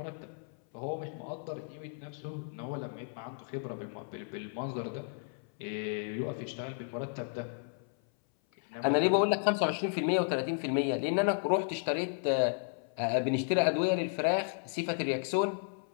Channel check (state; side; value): silent; right; 56 dB below the other